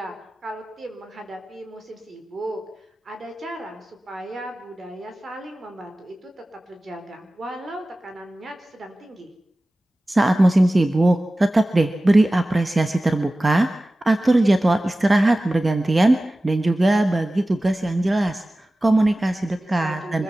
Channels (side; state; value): both; normal; correlation 0.96